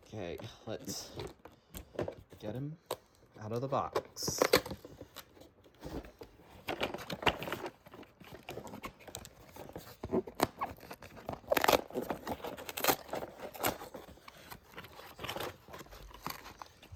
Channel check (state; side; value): identical; both; correlation 1.00